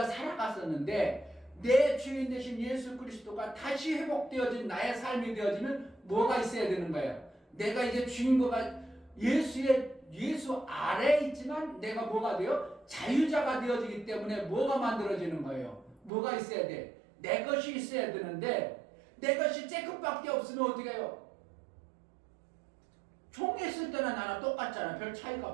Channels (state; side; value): drops out; left; at 16.1 s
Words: 살아갔었는데 내 주인 되신 예수 그리스도가 다시 회복되어진 나의 삶이 되어지면 뭐가 있어야 되는 거예요? 내가 이제 주인공가 예수 아래에 있지만 내가 뭐가 돼요? 자유자가 되어지기 때문에 뭐가 만들어지는 거예요? 뭐가 있어야 돼? 내 것이 있어야 되는데 내 것이 쬐끔밖에 없으면 어떻게 해요? 종했을 때나 나랑 똑같잖아. 별 차이가